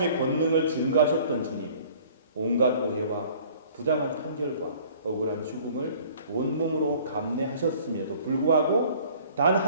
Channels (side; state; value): both; inverted; correlation -0.53